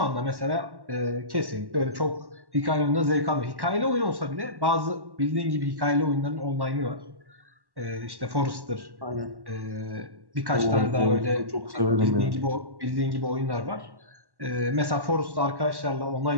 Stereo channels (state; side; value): late; left; 1.1 ms